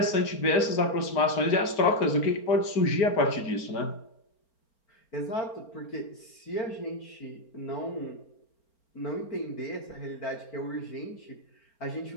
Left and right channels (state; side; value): late; right; 4.4 ms